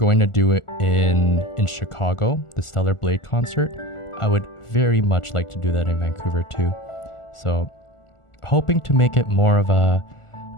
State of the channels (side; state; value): right; late; 1.4 ms